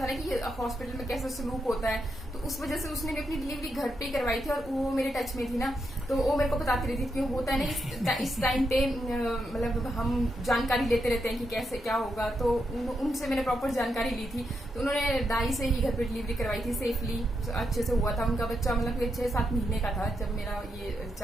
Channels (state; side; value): normal; both; correlation 0.83